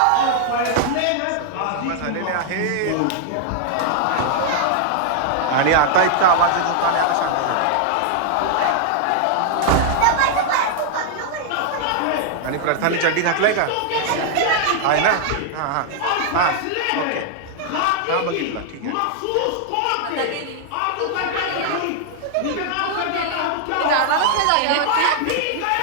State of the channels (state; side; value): different; both; correlation 0.00